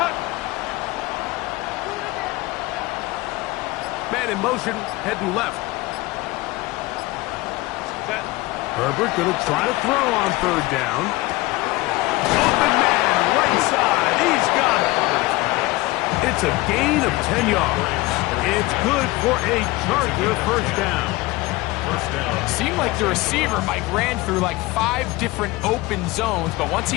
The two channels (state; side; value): quieter; right; 20.6 dB